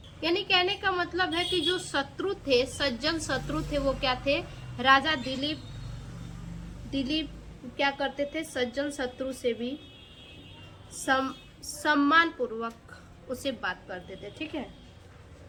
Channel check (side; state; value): both; identical; correlation 1.00